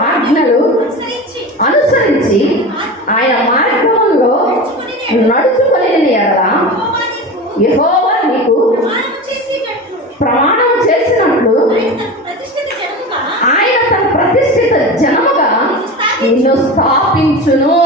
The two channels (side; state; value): both; normal; correlation 0.28